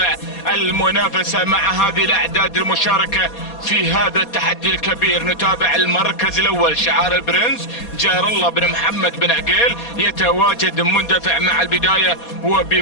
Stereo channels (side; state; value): right; late; 4.2 ms